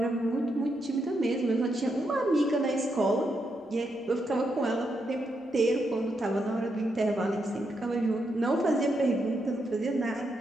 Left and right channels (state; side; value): normal; both; correlation 0.81